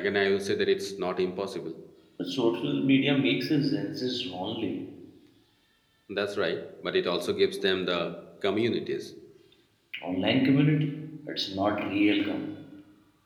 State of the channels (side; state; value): both; identical; correlation 1.00